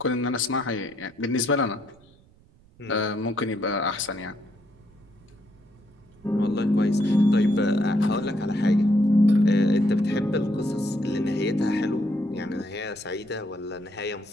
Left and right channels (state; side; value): noise; right; rumble, 28 dB below the sound